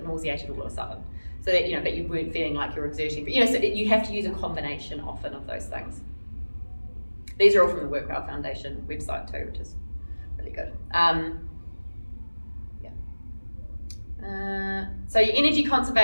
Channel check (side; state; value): both; inverted; correlation -1.00